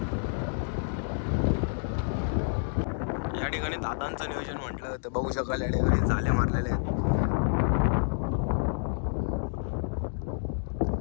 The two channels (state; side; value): silent; right; digital silence